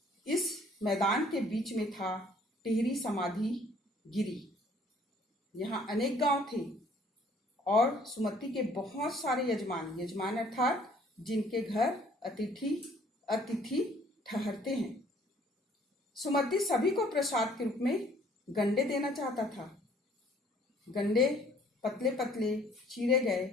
इस मैदान के बीच में था टिहरी समाधि गिरी। यहाँ अनेक गांव थे और सुमति के बहुत सारे यजमान अर्थात जिनके घर अतिथि ठहरते हैं। सुमति सभी को प्रसाद के रूप में गंडे देना चाहता था। गंडे पतले पतले चीरे गए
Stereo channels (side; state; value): both; normal; correlation 0.58